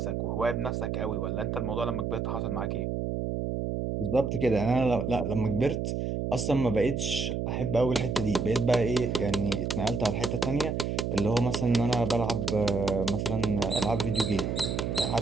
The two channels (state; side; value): noise; right; hum, 1 dB below the sound